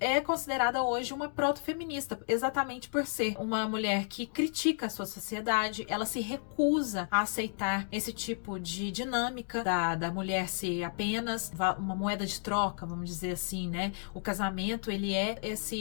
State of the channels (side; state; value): right; silent; digital silence